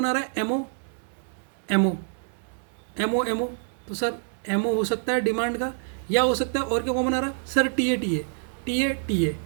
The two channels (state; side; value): silent; left; 61 dB below the other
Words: आ रहा है एमओ, तो सर एमओ हो सकता है डिमांड का, या हो सकता है और क्या कॉमन आ रहा है सर,